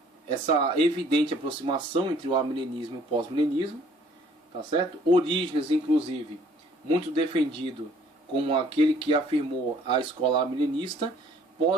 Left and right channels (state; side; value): normal; both; correlation 0.58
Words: essa evidente aproximação entre o amilenismo e o pós-milenismo, tá certo? Orígenes, inclusive, muito defendido como aquele que afirmou a escola amilenista,